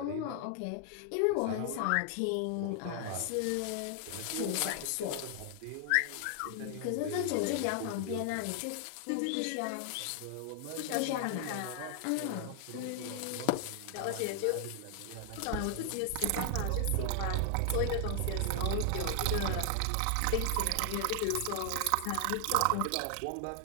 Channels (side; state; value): both; different; correlation 0.00